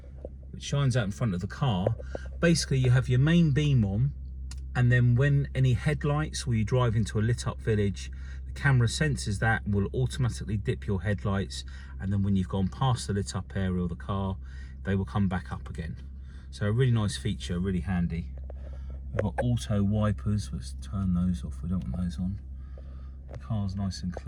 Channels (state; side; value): identical; both; correlation 1.00